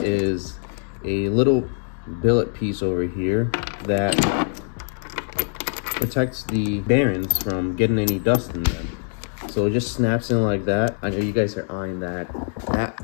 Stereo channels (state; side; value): silent; right; 63 dB below the other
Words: is a little billet piece over here that protects the bearings from getting any dust in them. So it just snaps in like that. I know you guys are eyeing that.